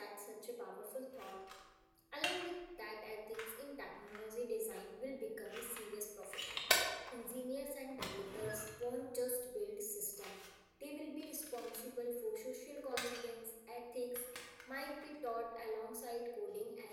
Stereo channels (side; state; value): both; identical; correlation 1.00